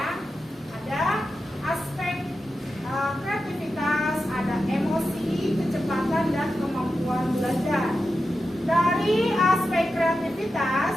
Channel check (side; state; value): both; normal; correlation 0.90